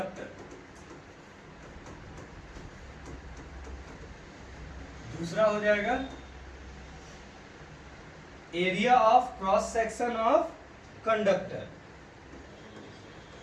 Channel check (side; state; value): both; identical; correlation 1.00